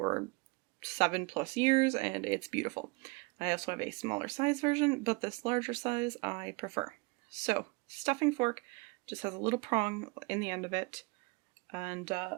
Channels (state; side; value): quieter; left; 28.3 dB